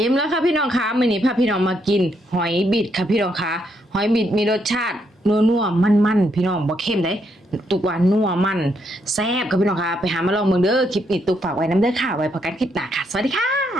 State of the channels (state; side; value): normal; both; correlation 0.76